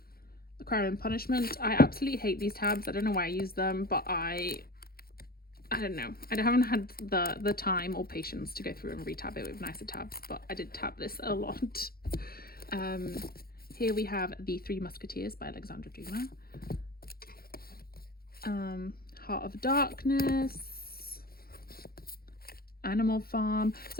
Crime and Punishment. I absolutely hate these tabs. I don't know why I use them, but I don't know. I haven't had the time or patience to go through and retab it with nicer tabs, but I did tab this a lot. Here we have The Three Musketeers by Alexandra Dumas. Heart of Darkness. Animal Farm.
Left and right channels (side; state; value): right; late; 0.44 ms